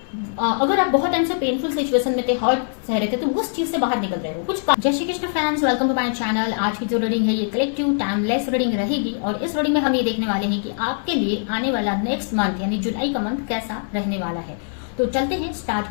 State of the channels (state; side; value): silent; right; 62 dB below the other